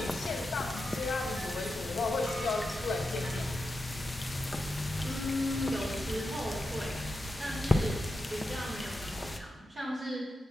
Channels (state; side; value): normal; both; correlation 0.89